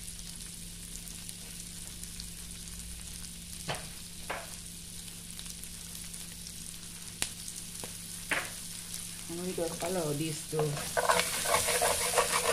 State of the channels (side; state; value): both; identical; correlation 1.00